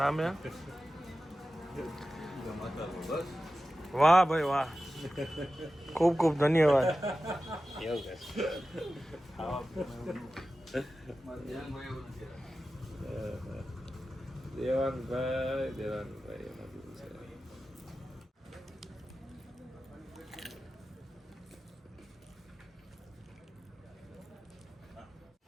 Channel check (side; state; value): both; normal; correlation 0.94